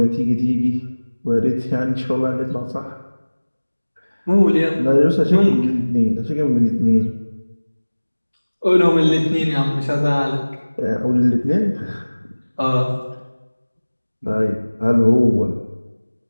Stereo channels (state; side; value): inverted; both; correlation -1.00